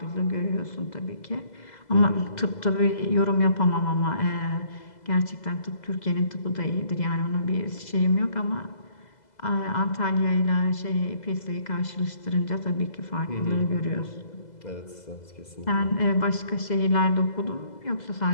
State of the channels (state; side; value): late; right; 2.0 ms